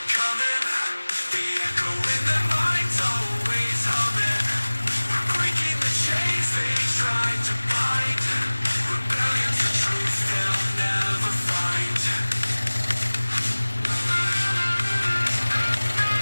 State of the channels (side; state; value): both; inverted; correlation -1.00